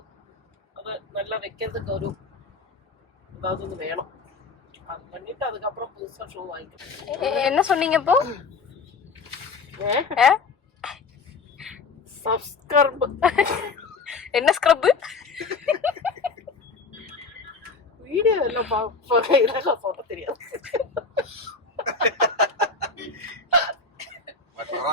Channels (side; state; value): right; quieter; 4.4 dB